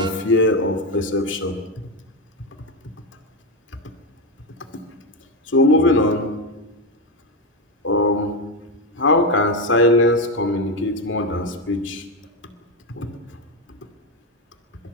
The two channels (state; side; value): normal; both; correlation 0.10